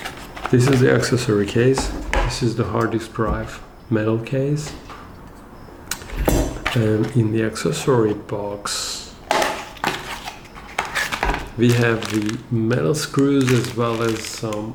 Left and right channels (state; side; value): identical; both; correlation 1.00